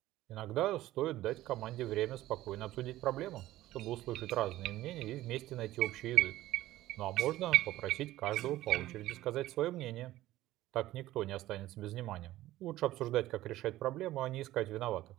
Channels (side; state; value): left; quieter; 15.5 dB